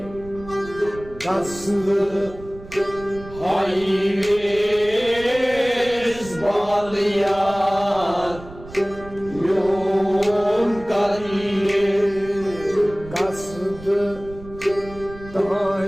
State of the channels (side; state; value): right; noise; rumble, 17 dB below the sound